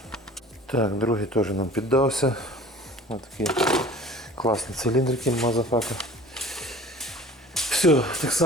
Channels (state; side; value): normal; both; correlation 0.45